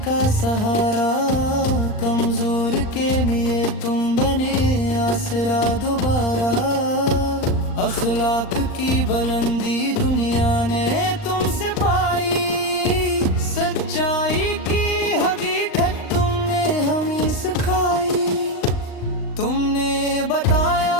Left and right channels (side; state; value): right; late; 39 ms